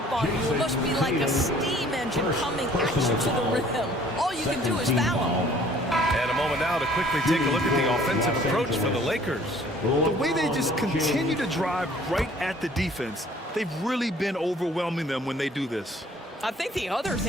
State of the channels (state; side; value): normal; both; correlation 0.55